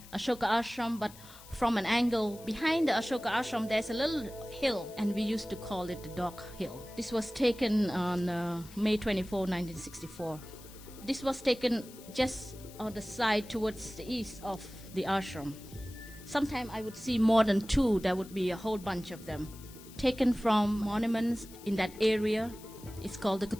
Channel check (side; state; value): left; noise; hiss, 19 dB below the sound